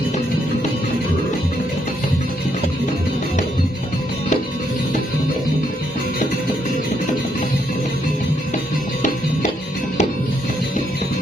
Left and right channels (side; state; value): both; normal; correlation 0.75